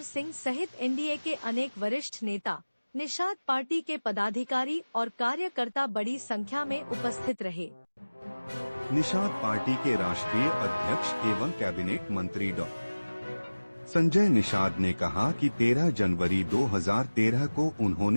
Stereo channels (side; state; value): both; inverted; correlation -1.00